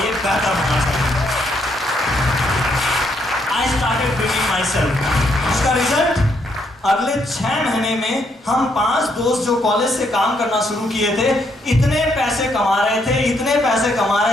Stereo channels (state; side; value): normal; both; correlation 0.74